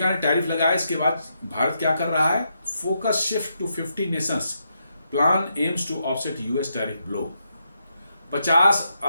ने टैरिफ लगाया, इसके बाद भारत क्या कर रहा है, focus shift to 50 nations, plan aims to offset US tariff blow. 50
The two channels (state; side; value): inverted; both; correlation -0.81